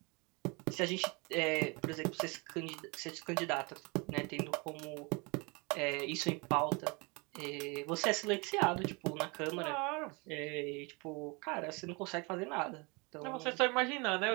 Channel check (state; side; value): quieter; left; 29.1 dB